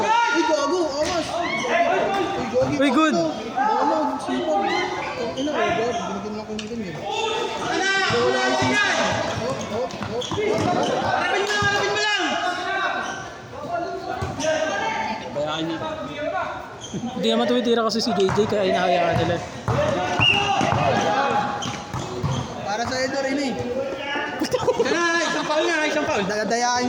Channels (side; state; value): both; identical; correlation 1.00